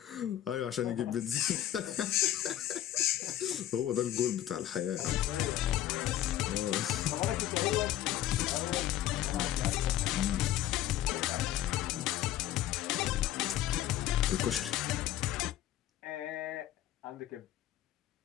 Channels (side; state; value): right; quieter; 12.8 dB